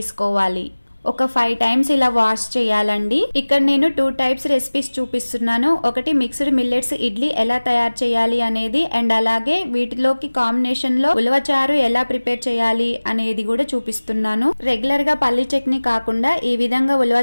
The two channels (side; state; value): both; inverted; correlation -1.00